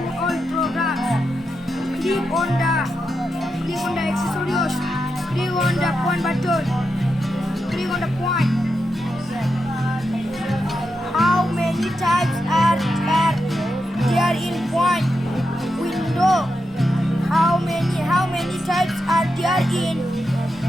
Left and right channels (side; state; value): both; normal; correlation 0.87